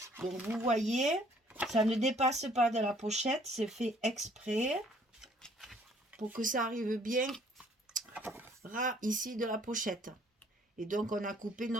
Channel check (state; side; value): normal; both; correlation 0.60